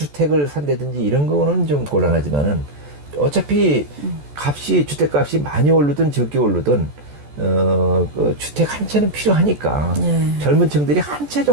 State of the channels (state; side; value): late; left; 14 ms